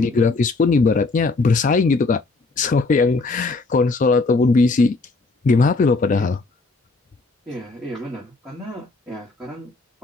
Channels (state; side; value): quieter; right; 3.6 dB